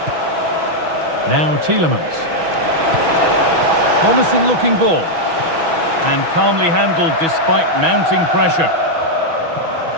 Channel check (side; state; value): left; late; 6.1 ms